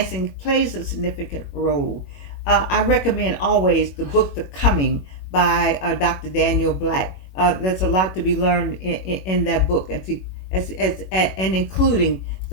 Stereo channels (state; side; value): late; right; 21 ms